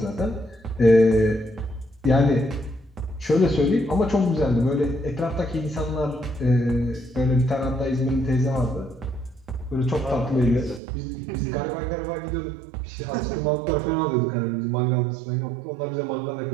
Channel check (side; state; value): left; drops out; at 10.8 s